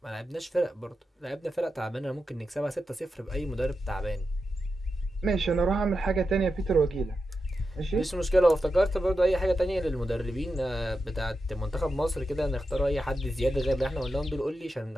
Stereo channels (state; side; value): normal; both; correlation 0.89